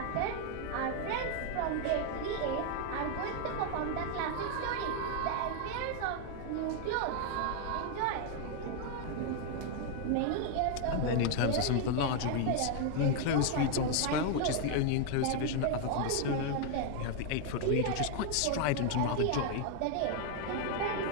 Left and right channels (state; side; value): different; both; correlation 0.00